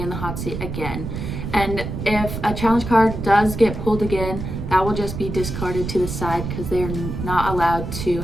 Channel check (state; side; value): noise; right; rumble, 6 dB below the sound